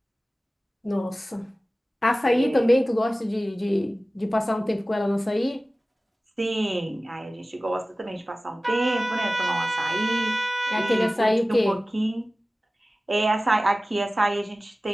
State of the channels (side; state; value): both; normal; correlation 0.97